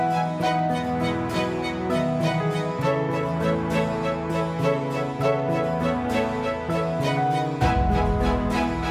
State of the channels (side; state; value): both; identical; correlation 1.00